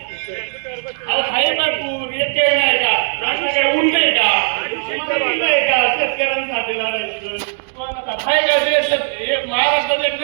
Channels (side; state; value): left; silent; digital silence